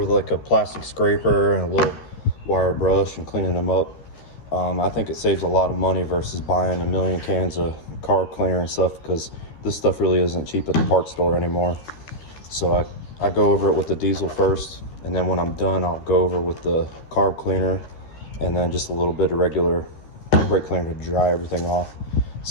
like a plastic scraper and a little wire brush and cleaning them up. I think it saves a lot of money versus buying a million cans of carb cleaner and stuff, because this stuff really isn't cheap at the parts store anymore. So I go over it with the diesel first, and then when I'm done I'll go over with the carb cleaner and then just a little bit of regular brake cleaner to dry everything off.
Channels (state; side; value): late; right; 13 ms